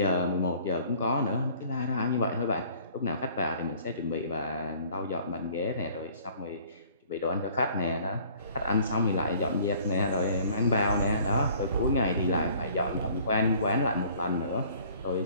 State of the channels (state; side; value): inverted; both; correlation -0.54